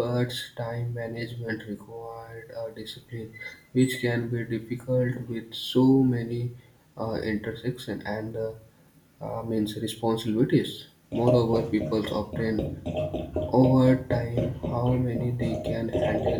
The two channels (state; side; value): identical; both; correlation 1.00